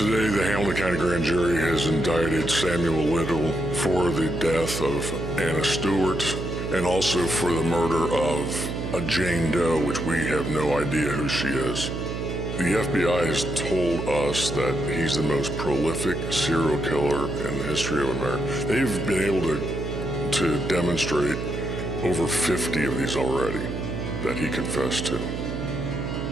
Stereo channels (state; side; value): noise; right; hum, 4 dB below the sound